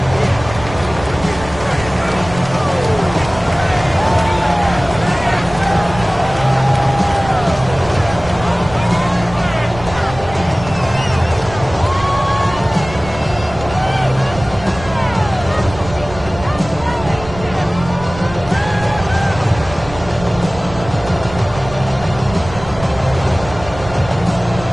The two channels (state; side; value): noise; right; rumble, 13 dB below the sound